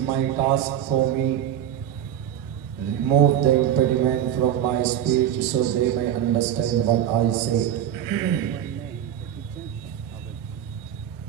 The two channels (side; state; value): left; quieter; 10.6 dB